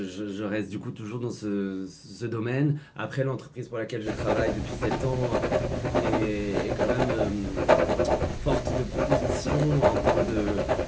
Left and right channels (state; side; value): identical; both; correlation 1.00